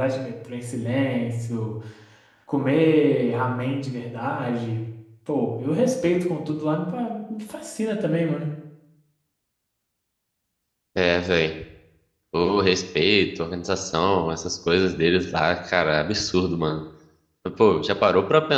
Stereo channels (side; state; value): both; identical; correlation 1.00